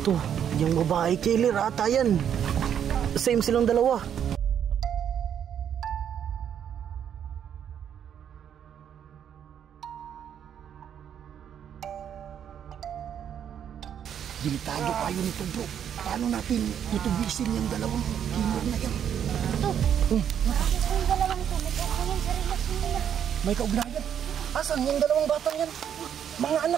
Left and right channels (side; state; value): left; quieter; 9.0 dB